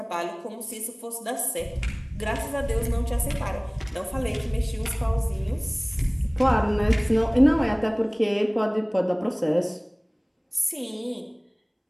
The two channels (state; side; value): identical; both; correlation 1.00